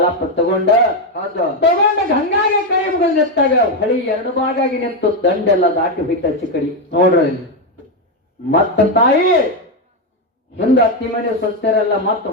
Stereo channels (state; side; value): normal; both; correlation 0.07